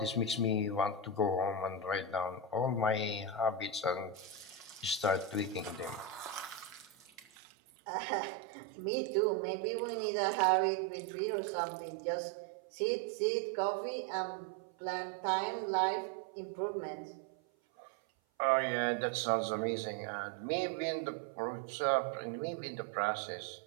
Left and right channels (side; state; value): left; drops out; at 7.2 s